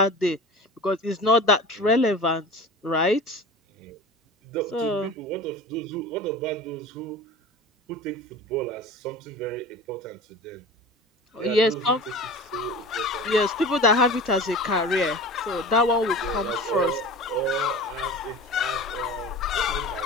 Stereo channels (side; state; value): both; normal; correlation 0.36